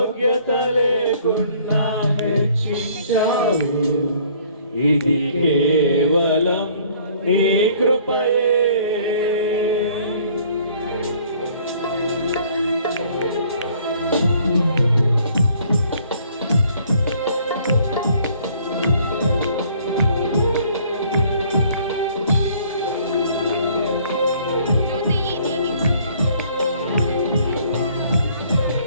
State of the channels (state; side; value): inverted; both; correlation -0.58